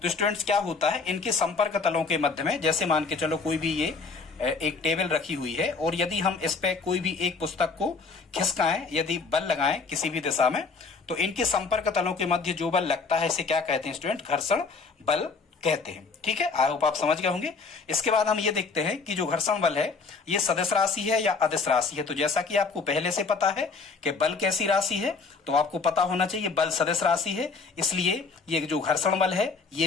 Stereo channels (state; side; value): quieter; right; 4.6 dB